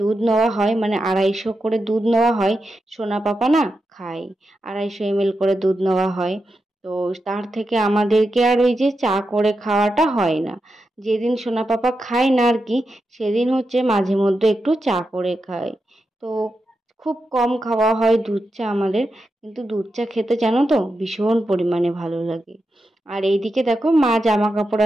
দুধ নেওয়া হয়, মানে 250 করে দুধ নেওয়া হয়। সোনা পাপা না খায়, 250 ml করে দুধ নেওয়া হয়। তো তার থেকে আমাদেরকে আর ওই যে চা করে খাওয়াটা হয় না। যেদিন সোনা পাপা খায় না আর কি, সেদিন হচ্ছে মাঝে মধ্যে একটু চা করে খায়। তো খুব কম খাওয়া হয় দুধ চা আমাদের, কিন্তু দুধ চা খেতে জানো তো ভীষণ পরিমাণে ভালো লাগে। আর এইদিকে দেখো, মা জামা কাপড়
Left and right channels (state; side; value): normal; both; correlation 0.88